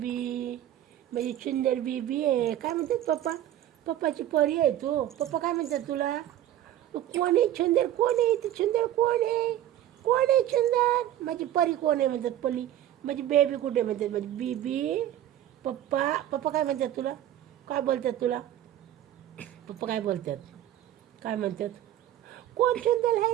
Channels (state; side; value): quieter; left; 12.3 dB